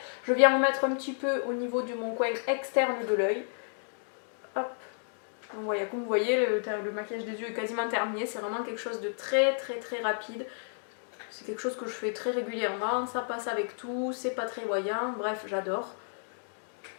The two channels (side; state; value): right; silent; digital silence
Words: Je viens en mettre un petit peu au niveau de mon coin externe de l'œil. Hop. Donc voilà, comme vous voyez, le maquillage des yeux est quasiment terminé. C'est vraiment quelque chose de très rapide. C'est quelque chose que je fais très régulièrement. Ça passe avec tout, c'est pas très voyant. Bref, j'adore.